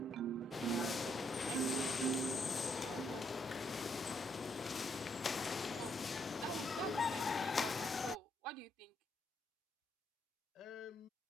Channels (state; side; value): normal; both; correlation 0.76